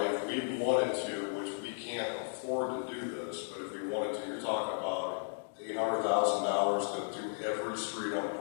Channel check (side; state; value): right; silent; digital silence